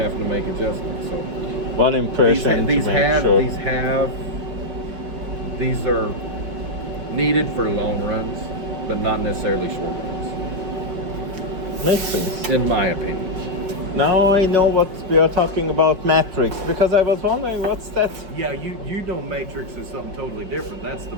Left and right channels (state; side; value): late; left; 5.2 ms